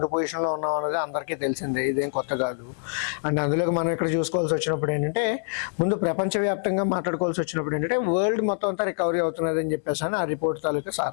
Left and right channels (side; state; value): right; silent; digital silence